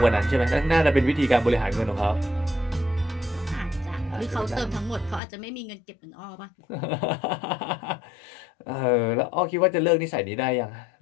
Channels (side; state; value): right; drops out; at 5.2 s